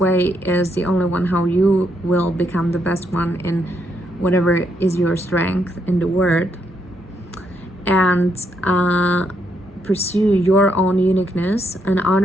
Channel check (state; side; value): normal; both; correlation 0.77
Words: is the only one how you will become the best one in whatever is your strength in the world. And pursue your own uniqueness and